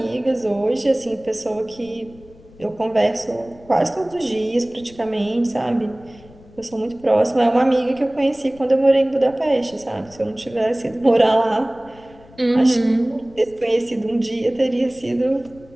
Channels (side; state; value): left; noise; rumble, 24 dB below the sound